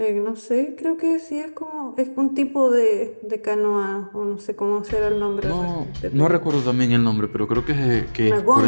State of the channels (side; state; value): both; inverted; correlation -1.00